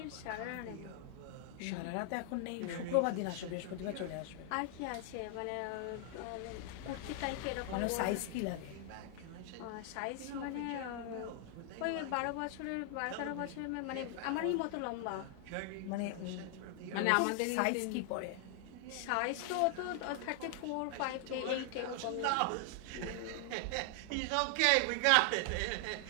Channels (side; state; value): both; different; correlation 0.00